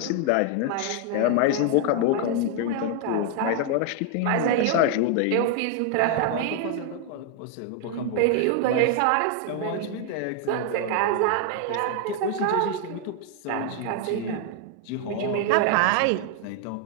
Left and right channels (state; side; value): different; both; correlation 0.00